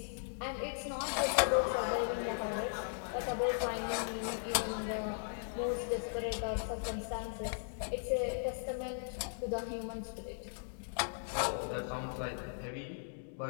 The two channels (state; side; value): silent; right; digital silence